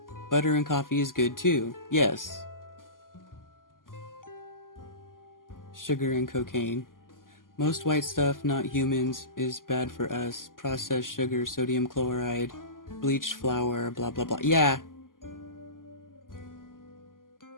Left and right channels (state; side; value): late; right; 0.90 ms